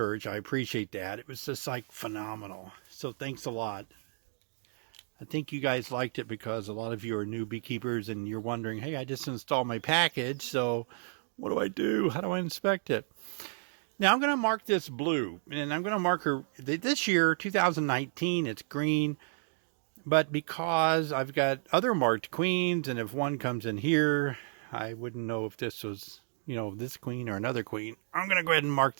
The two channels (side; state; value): left; silent; digital silence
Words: I appreciate that. It was just like phenomenal. So thanks a lot. I think you guys liked it because a lot of you are new beekeepers and you're wondering, hey, I just installed my package, so what do I do? How do I inspect it? Now I'm going to mark this blue, and I'm going to mark her this year, 2019, it's green. But because I've got other marked queens, and if one comes in here, I wouldn't know if this was, you know, this queen or another queen. I'm going to go ahead and mark